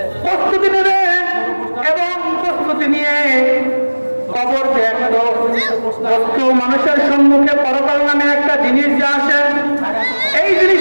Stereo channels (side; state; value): both; inverted; correlation -1.00